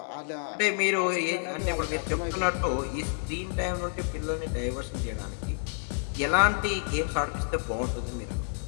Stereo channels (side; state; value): right; silent; 58 dB below the other